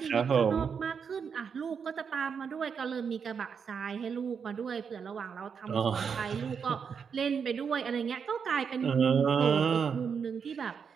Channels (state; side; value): quieter; left; 6.5 dB